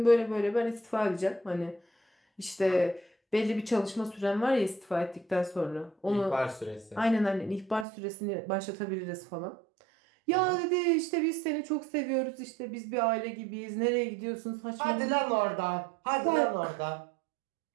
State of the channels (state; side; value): drops out; left; at 7.9 s